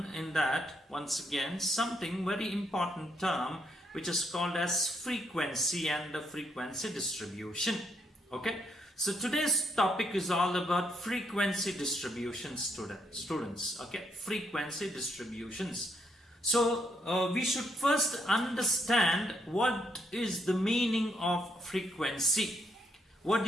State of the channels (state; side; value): normal; both; correlation 0.75